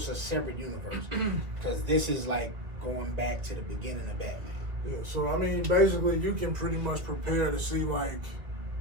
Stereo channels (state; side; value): late; left; 2.1 ms